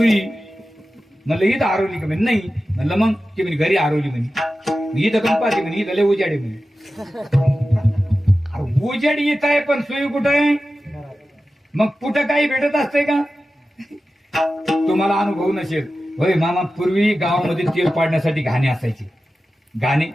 म्हणलं इथं हरवली का, म्हणे नाही. म्हणलं मग, ती म्हणे घरी हरवली. म्हणे इथं कम पाहते, म्हणे इथं लय उजाडे. म्हणे उजाडी इथं आहे पण सुई कुठं आहे. मग कुठं काही भेटत असतंय का. तुम्हाला अनुभव नसेल होय मामा, पूर्वी गावामध्ये तेल पाडण्यासाठी घाणे असायचे, घाणे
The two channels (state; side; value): normal; both; correlation 0.94